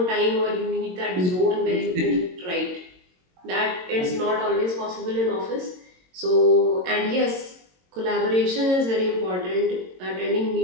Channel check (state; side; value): late; left; 22 ms